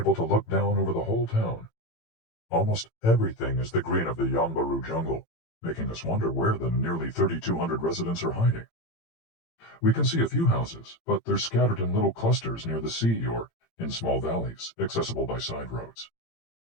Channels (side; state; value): right; late; 18 ms